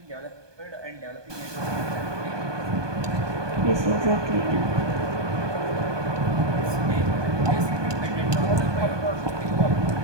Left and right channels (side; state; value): left; late; 1.2 ms